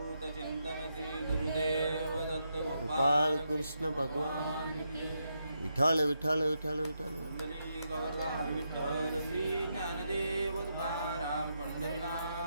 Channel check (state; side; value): inverted; both; correlation -0.82